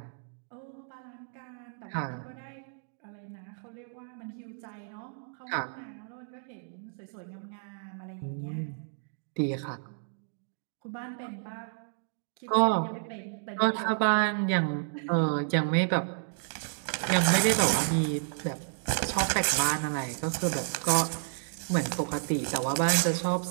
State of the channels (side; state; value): left; silent; digital silence